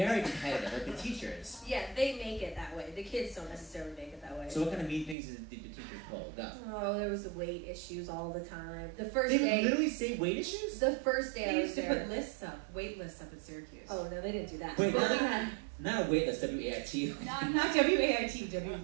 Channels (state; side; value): drops out; left; at 5.2 s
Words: competitive, like the teachers. Yeah, they make it that way. The kids don't necessarily make it that way. So what kind of mean things did the teachers pull? Go. Oh, there was weight issues all the time. The first They day... would literally say weight issues? The first day They I was used to there... put lists up, wait lists up at Syracuse. Oh, no, they didn't do that. Wait, But we had... not a wait list, W-A-I-T. Not W-A-I-T,